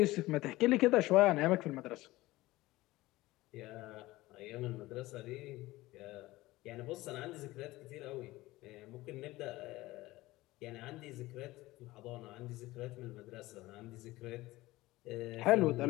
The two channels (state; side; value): quieter; right; 18.6 dB